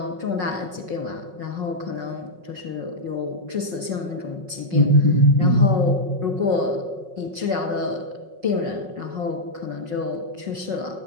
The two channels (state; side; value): late; left; 5.4 ms